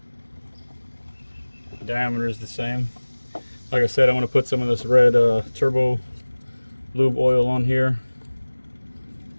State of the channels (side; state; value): both; inverted; correlation -1.00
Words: Diameter is the same. Like I said, I'm going to put some of this red turbo lube oil on here